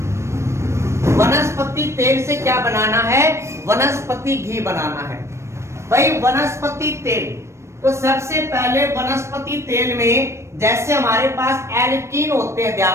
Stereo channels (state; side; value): late; left; 0.13 ms